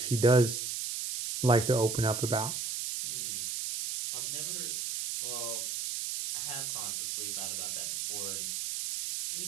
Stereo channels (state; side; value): noise; right; hiss, 3 dB below the sound